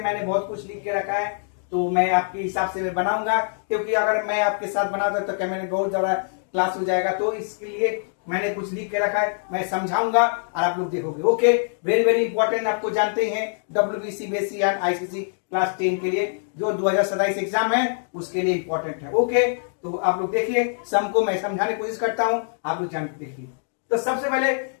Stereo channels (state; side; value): silent; right; digital silence